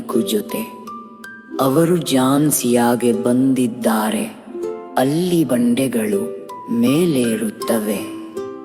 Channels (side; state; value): both; identical; correlation 1.00